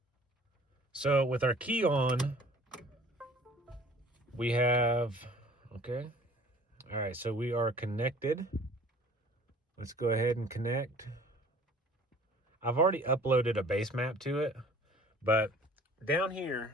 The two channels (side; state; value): both; normal; correlation 0.50